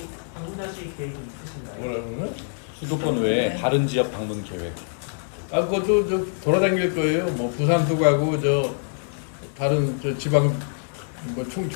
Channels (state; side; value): silent; right; 62 dB below the other